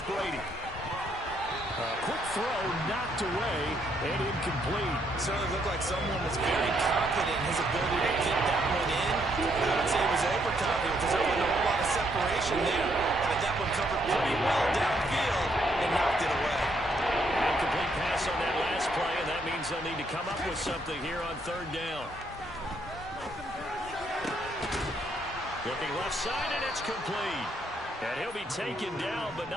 Brady. A quick throw knocked away and incomplete. Certainly looked like someone was very confident in his ability to kick that one in. I would say he was overconfident because there wasn't a whole lot of separation there. Had that one covered pretty well downfield and knocked it away. Incomplete pass on that last play, and that means they'll need to come up with something here on 3rd down. Looking left side, and it's complete. And he'll be taken down, but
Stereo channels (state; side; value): normal; both; correlation 0.73